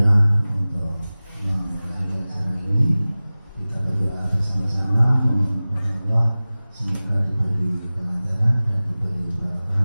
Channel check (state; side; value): inverted; both; correlation -0.98